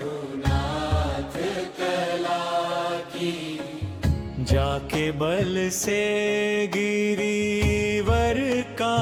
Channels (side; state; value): both; identical; correlation 1.00